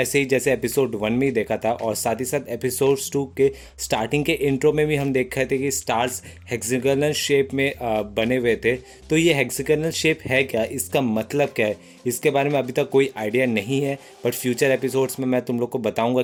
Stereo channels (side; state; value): both; identical; correlation 1.00